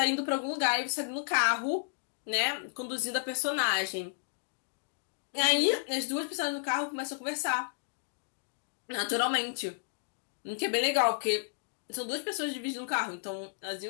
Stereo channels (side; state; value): right; silent; digital silence